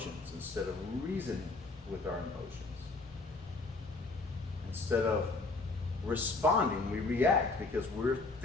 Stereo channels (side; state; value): right; quieter; 3.5 dB